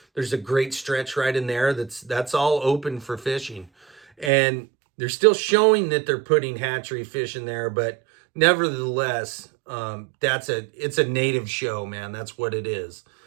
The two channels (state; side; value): drops out; left; at 4.3 s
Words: There's a great stretch right in there that's all open for fishing. And they're still showing that they're putting hatchery fish in there, but nevertheless, it's a native show, man. That's what it is.